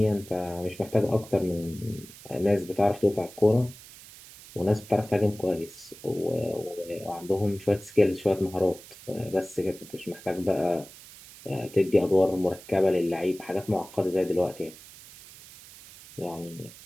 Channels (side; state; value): right; noise; hiss, 19 dB below the sound